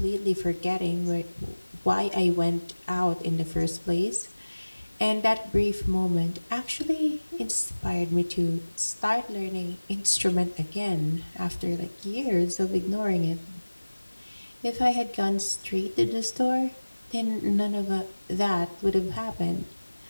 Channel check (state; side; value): inverted; both; correlation -1.00